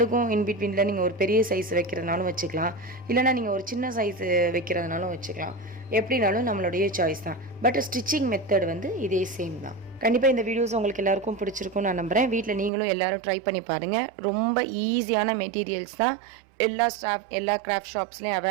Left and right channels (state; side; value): drops out; left; at 12.7 s